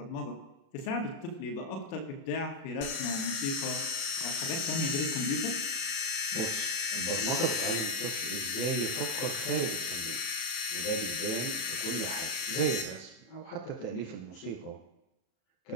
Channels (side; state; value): right; late; 36 ms